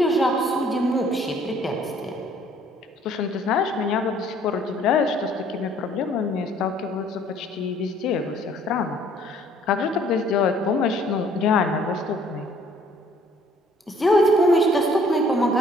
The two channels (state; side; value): normal; both; correlation 0.59